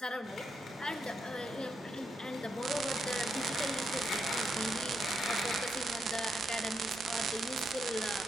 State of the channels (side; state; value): both; normal; correlation 0.81